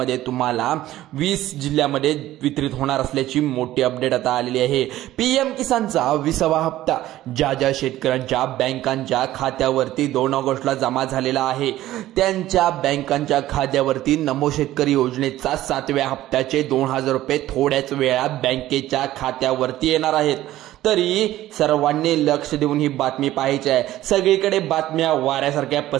तुम्हाला 20 जिल्ह्यामध्ये वितरित होणार असल्याची मोठी अपडेट आता आलेली आहे। पीएम किसानचा 20वा हप्ता ज्या शेतकऱ्यांच्या बँकांच्या खात्यावरती 2 ऑगस्टला जमा झालेला आहे त्यांच्या बँकांच्या खात्यावरती नमो शेतकरी योजनेचा 7व्या हप्त्याचे 2000 रुपये थोड्याच वेळात बँकेच्या खात्यावर वरती येणार आहेत। तरी सर्वांनी लक्ष देऊन ही बातमी पाहायची आहे। सगळीकडे बातम्या वाऱ्यासारख्या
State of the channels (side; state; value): left; quieter; 14.7 dB